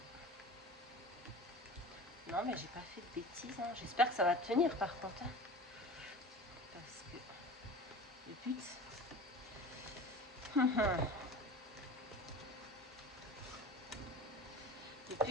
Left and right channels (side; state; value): both; normal; correlation 0.36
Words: Non, mais j'ai pas fait de bêtises. Hein. J'espère que ça va tenir par contre. Hein. Parce que le but... le